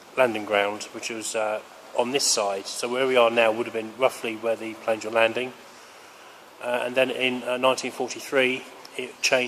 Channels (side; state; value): both; identical; correlation 1.00